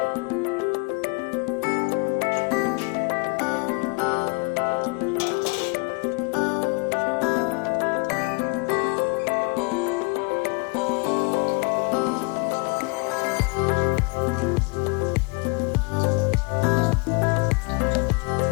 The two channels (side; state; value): right; quieter; 31.1 dB